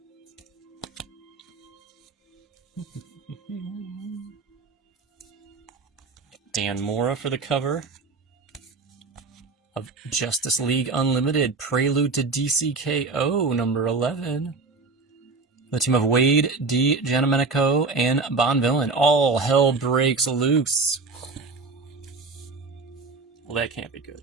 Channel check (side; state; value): left; quieter; 4.0 dB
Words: Dan Mora for the cover of Justice League Unlimited, Prelude to DCKO, number 11. The team of Wade, D. Giandomenico, and Bonvillain. All hell breaks loose. Well, that can't be good.